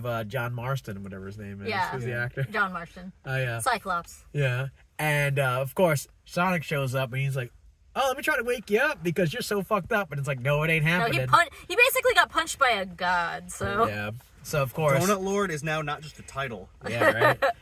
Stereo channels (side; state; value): both; identical; correlation 1.00